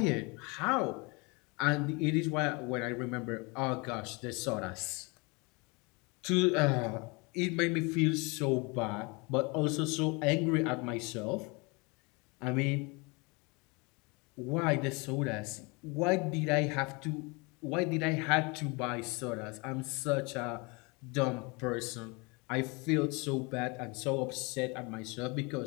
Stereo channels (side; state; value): right; quieter; 28.6 dB